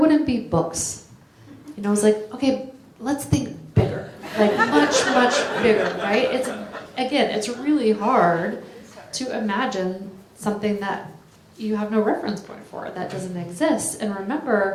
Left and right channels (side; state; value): both; identical; correlation 1.00